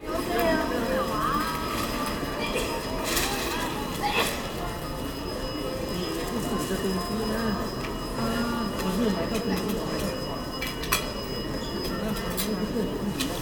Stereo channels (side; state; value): both; identical; correlation 1.00